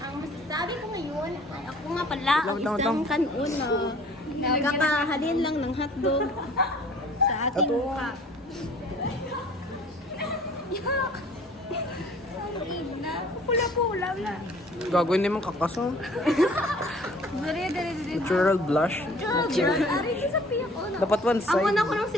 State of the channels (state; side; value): normal; both; correlation 0.52